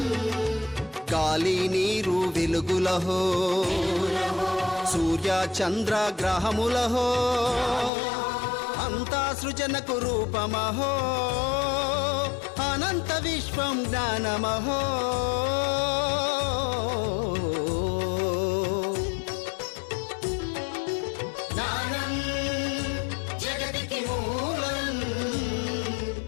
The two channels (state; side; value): drops out; right; at 7.9 s